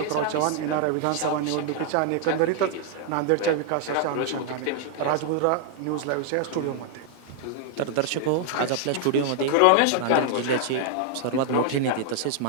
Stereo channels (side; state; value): both; different; correlation 0.00